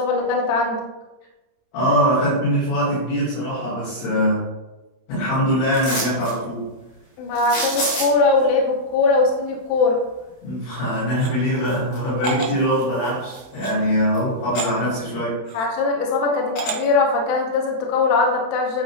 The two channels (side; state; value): right; late; 31 ms